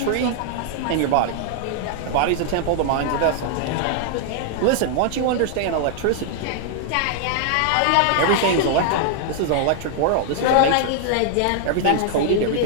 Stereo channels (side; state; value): both; different; correlation -0.01